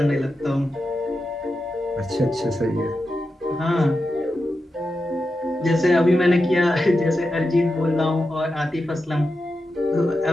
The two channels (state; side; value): normal; both; correlation 0.89